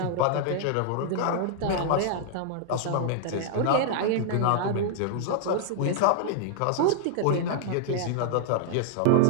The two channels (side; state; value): both; different; correlation -0.01